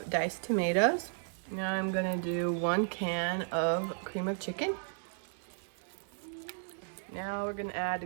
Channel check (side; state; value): left; silent; 55 dB below the other